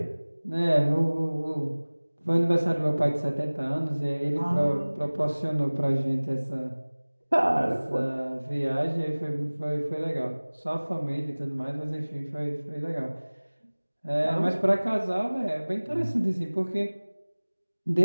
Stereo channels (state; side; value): inverted; both; correlation -1.00